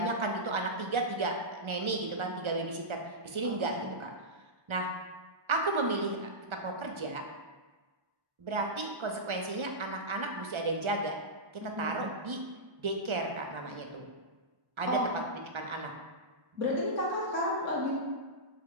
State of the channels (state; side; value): late; left; 1.3 ms